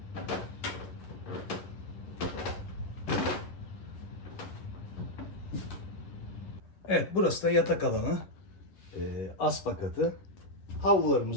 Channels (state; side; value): late; right; 11 ms